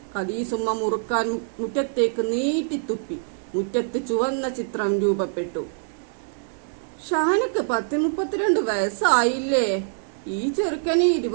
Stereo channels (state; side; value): silent; left; digital silence